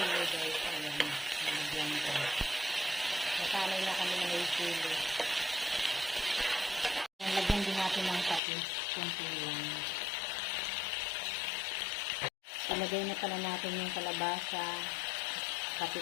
guys, ayan, nalagyan ko. Nasanay na kami na may chili. Lagyan din natin ng patis, kunti lang. Palagay na pala natin yung kalabasa, pati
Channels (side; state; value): right; drops out; at 8.4 s